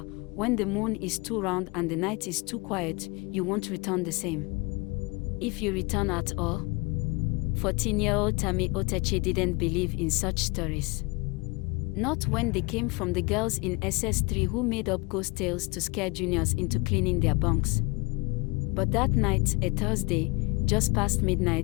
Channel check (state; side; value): quieter; right; 27.0 dB